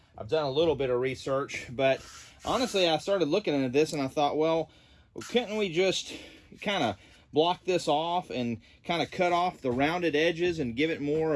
I've done a little bit of research. But honestly, I started looking into this and I thought, well, couldn't we just kind of block this off and kind of cut off the rounded edges and give it more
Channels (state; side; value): identical; both; correlation 1.00